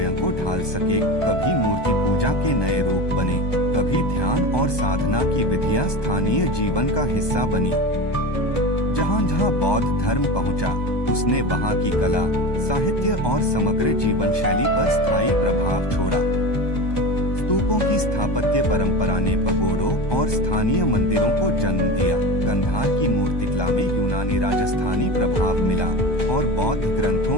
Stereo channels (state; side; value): late; right; 1.2 ms